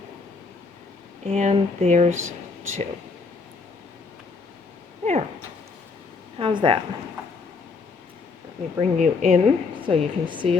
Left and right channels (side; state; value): right; quieter; 4.5 dB